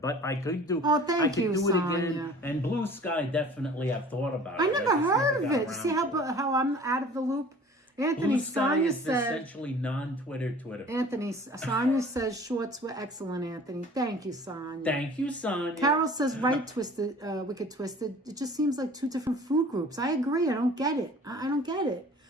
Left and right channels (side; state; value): both; normal; correlation 0.46